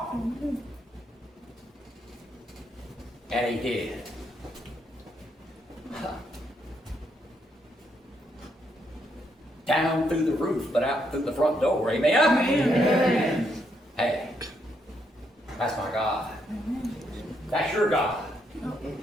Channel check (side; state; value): both; normal; correlation 0.76